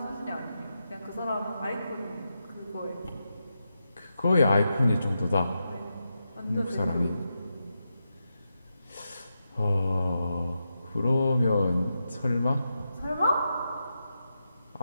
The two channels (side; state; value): both; inverted; correlation -0.87